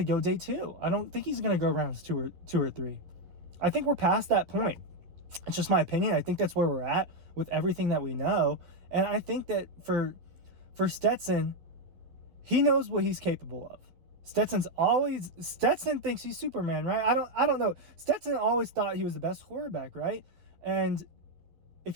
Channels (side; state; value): left; late; 11 ms